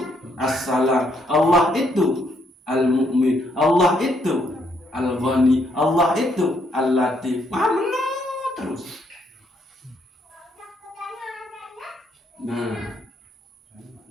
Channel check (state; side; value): normal; both; correlation 0.73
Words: As-Salam. Allah itu Al-Mu'min. Allah itu Al-Ghani. Allah itu Al-Latif. Terus. Nah,